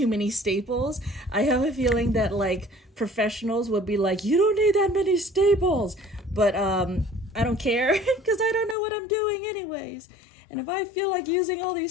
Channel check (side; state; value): right; drops out; at 8.8 s